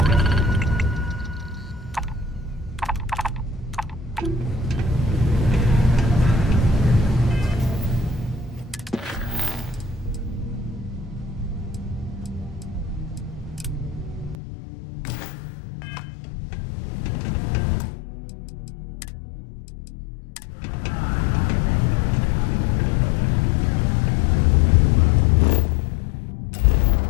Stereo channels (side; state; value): right; drops out; at 14.4 s